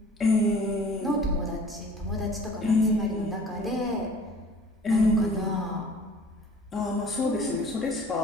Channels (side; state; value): both; normal; correlation 0.49